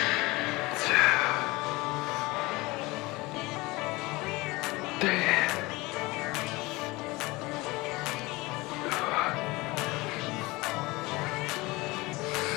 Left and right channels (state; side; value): quieter; right; 22.2 dB